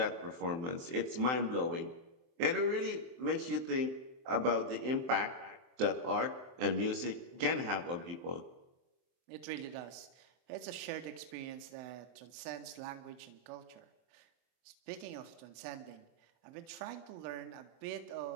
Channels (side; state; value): left; late; 23 ms